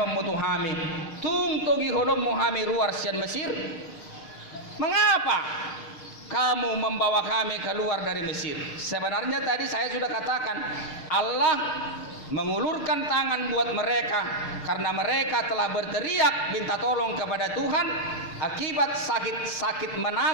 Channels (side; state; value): right; late; 6.5 ms